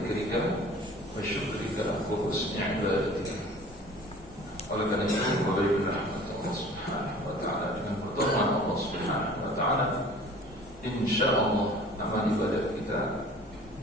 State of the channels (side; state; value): both; normal; correlation 0.47